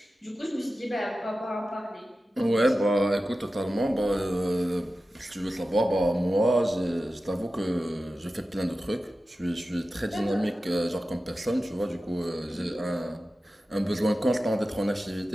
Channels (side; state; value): both; normal; correlation 0.94